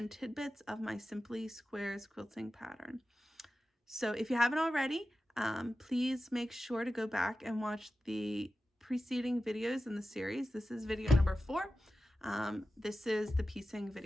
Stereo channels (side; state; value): both; normal; correlation 0.94